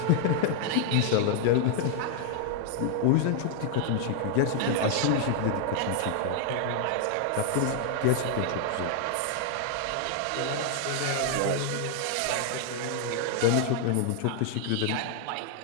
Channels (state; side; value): different; both; correlation 0.00